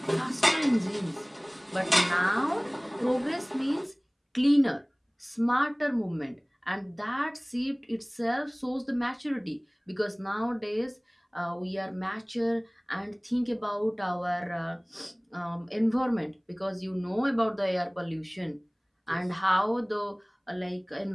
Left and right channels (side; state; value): both; identical; correlation 1.00